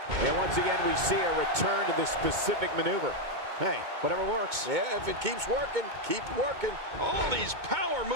And once again, we see a return to this specific maneuver. Hey, whatever works. Yeah, if it keeps working, keep working. All these power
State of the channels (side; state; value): left; late; 2.2 ms